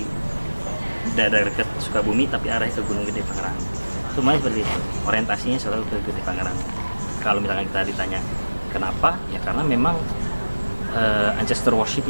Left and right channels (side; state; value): both; inverted; correlation -1.00